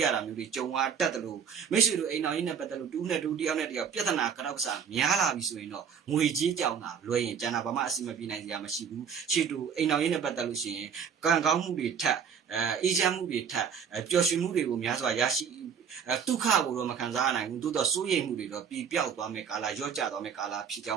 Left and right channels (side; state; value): left; quieter; 7.2 dB